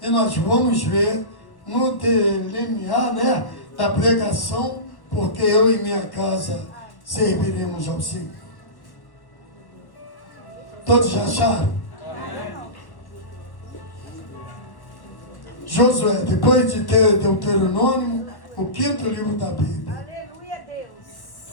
E nós vamos ver no delinear, né, da pregação, porque eu e minha casa serviremos ao Senhor. Todos já acharam? Josué, depois de ter Deuteronômio, o 5º livro da Bíblia. Aleluia,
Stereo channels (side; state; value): right; late; 1.1 ms